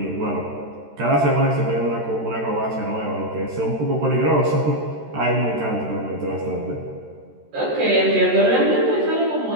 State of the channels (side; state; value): left; late; 13 ms